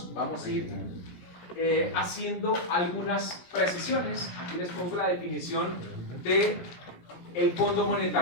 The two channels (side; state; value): right; late; 17 ms